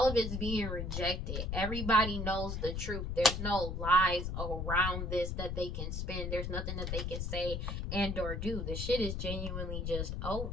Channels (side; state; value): left; noise; rumble, 3 dB below the sound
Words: of it's being rejected. Everybody knows the truth. There's no lies around this that they can spin. There's nothing that they can say and or do. The shit is genuinely just